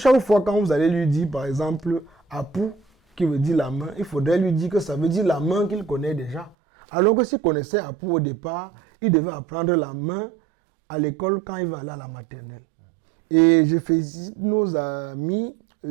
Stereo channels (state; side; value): drops out; left; at 6.6 s